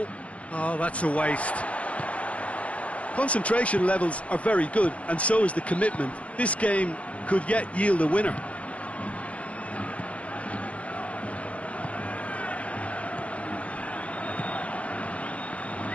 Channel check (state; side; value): late; right; 0.064 ms